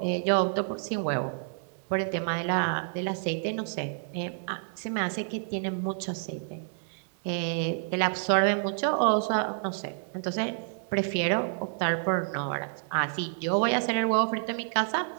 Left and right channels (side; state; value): left; silent; digital silence